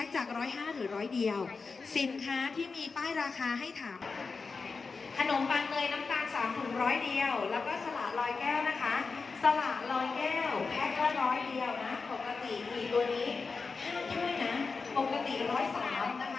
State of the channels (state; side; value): quieter; right; 4.6 dB